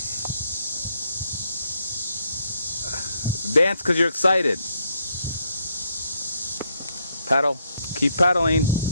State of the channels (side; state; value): both; inverted; correlation -0.75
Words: Dance because you're excited. Pedal. Keep pedaling.